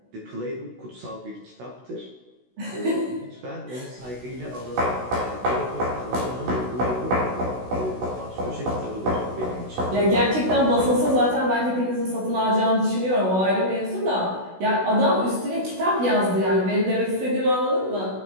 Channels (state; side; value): late; left; 16 ms